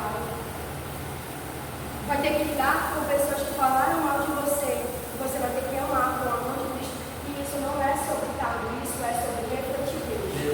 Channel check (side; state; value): both; identical; correlation 1.00